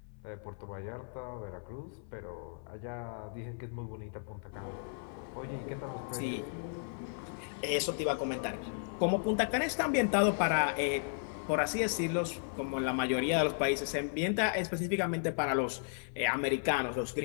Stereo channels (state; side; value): silent; right; 55 dB below the other